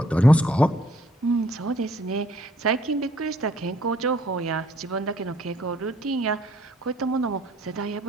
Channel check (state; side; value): normal; both; correlation 0.63